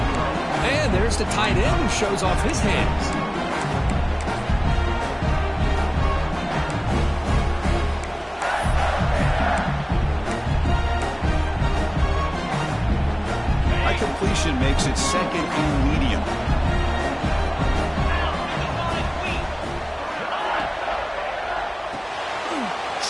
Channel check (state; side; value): identical; both; correlation 1.00